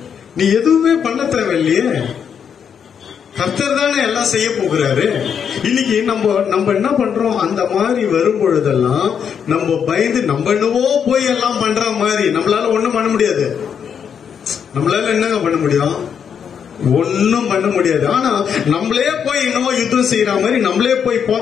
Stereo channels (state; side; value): quieter; right; 7.5 dB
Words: நீ எதுவுமே பண்ண தேவையில்லையே. கர்த்தர் தானே எல்லாம் செய்ய போகிறாரு. இன்னைக்கு நம்ம என்ன பண்றோம்? அந்த மாதிரி வரும் பொழுதெல்லாம் நம்ம பயந்து நம்ம என்னவோ போய் எல்லாம் பண்ற மாதிரி நம்மளால ஒண்ணும் பண்ண முடியாது. நம்மளால என்னங்க பண்ண முடியும்? ஒன்னும் பண்ண முடியாது. ஆனா நம்மளே போய் என்னவோ யுத்தம் செய்யற மாதிரி, நம்மளே போய்